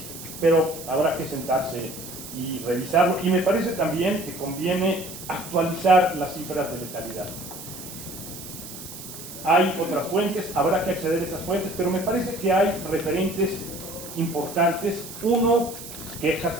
Pero habrá que sentarse y revisarlo. Y me parece también que conviene actualizar las cifras de letalidad. Hay otras fuentes, habrá que acceder a esas fuentes, pero me parece que hay referentes importantes. Uno, quejas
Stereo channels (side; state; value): right; noise; hiss, 12 dB below the sound